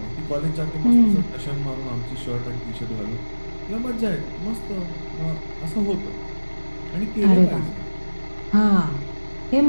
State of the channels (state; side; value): inverted; both; correlation -1.00